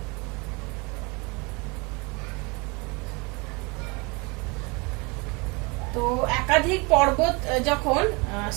তো একাধিক পর্বত যখন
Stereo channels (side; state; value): left; quieter; 28.8 dB